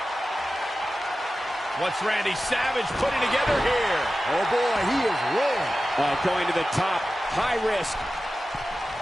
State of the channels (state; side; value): normal; both; correlation 0.94